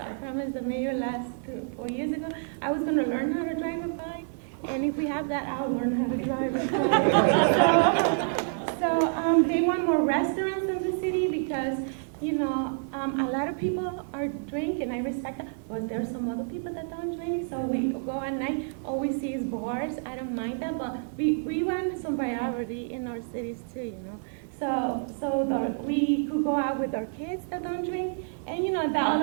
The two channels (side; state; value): left; silent; digital silence